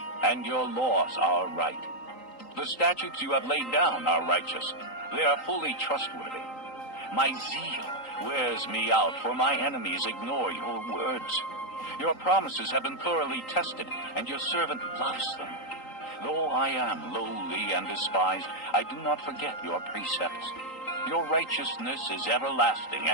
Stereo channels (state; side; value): late; right; 3.8 ms